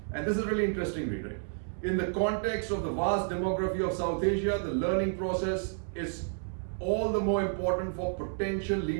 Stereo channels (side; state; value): left; silent; 57 dB below the other